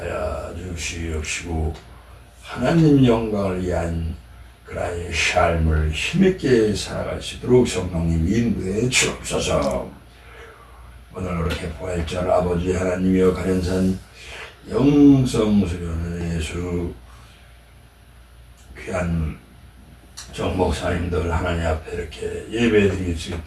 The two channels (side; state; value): both; identical; correlation 1.00